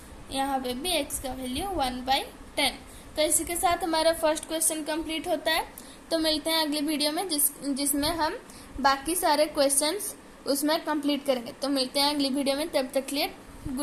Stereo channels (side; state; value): both; identical; correlation 1.00